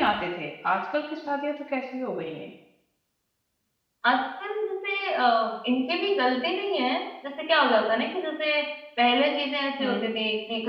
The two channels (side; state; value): both; identical; correlation 1.00